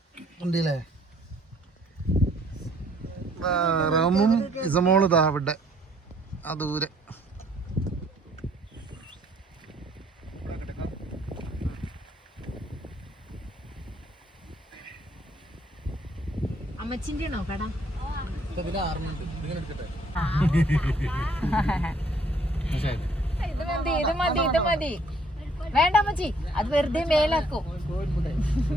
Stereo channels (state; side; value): normal; both; correlation 0.63